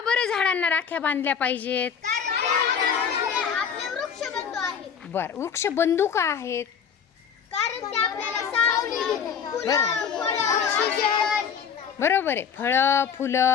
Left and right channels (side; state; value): right; quieter; 7.2 dB